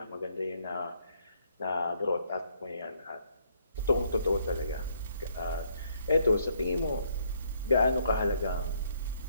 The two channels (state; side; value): inverted; both; correlation -0.69